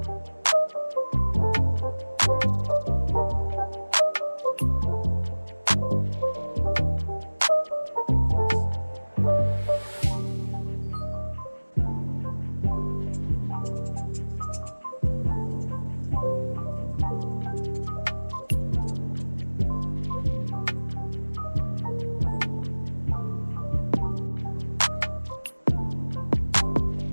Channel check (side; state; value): both; inverted; correlation -1.00